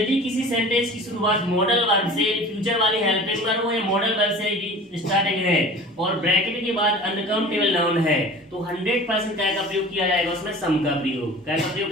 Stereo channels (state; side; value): normal; both; correlation 0.40